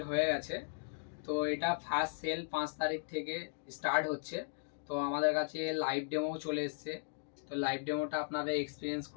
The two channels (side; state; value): right; silent; digital silence